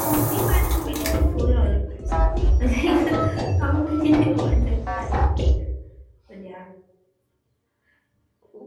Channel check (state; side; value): identical; both; correlation 1.00